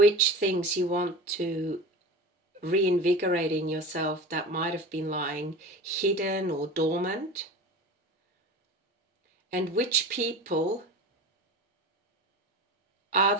things you want to reinvigorate in yourself that might have been lying hidden or dormant, and which people are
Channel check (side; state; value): both; normal; correlation 0.33